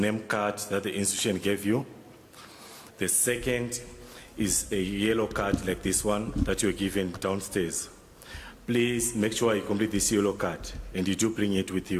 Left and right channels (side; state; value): both; identical; correlation 1.00